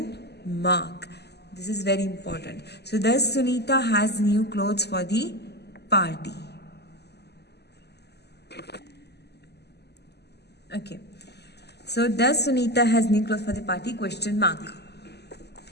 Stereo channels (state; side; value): late; right; 0.49 ms